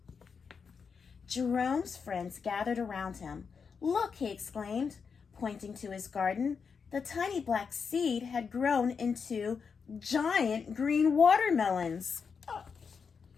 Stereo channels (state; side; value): quieter; right; 5.8 dB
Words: Jerome's friends gathered around him. "Look," he exclaimed, pointing to his garden. The tiny black seed had grown into giant green watermelons. Oh.